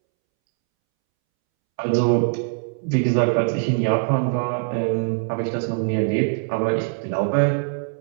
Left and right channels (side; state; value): left; silent; 64 dB below the other